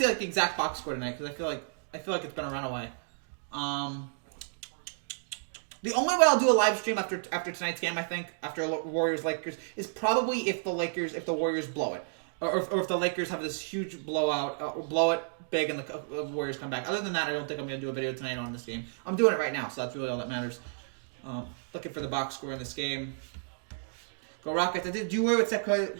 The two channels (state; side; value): silent; left; digital silence